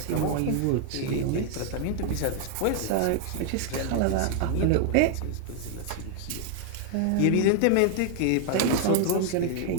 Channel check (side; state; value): both; different; correlation 0.00